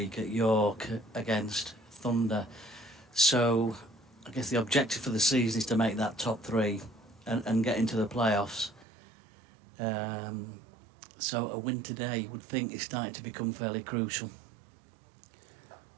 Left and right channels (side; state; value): left; drops out; at 8.8 s